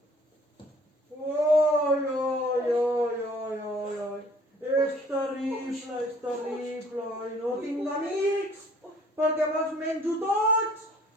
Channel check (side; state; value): both; normal; correlation 0.56